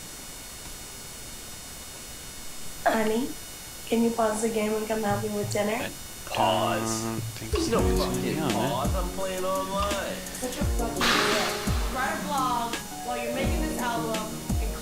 Honey, can you pause the game and come help me with dinner? Pause. Think There's so. no fucking Yeah, man. pause. I'm playing online. Such a fucking idiot. Write a blog while you're making this album and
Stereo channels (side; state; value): both; identical; correlation 1.00